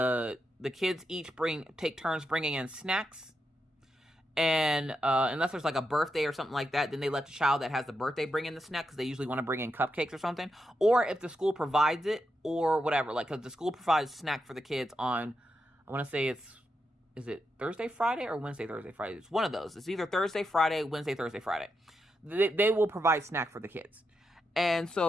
kids each take turns bringing in snacks. And unless there's like a birthday or something like that, then they let the child that has the birthday bring in the snack, because they usually want to bring in cupcakes or something. Or if the school provides it or whatever, like, because the school provides snack for the kids on, I want to say is it Thursday, Friday, or Wednesday, Thursday, Friday? It's one of those. It's either Thursday, Friday, Wednesday, Thursday, Friday. They will provide snack for the kids. And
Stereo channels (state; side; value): normal; both; correlation 0.85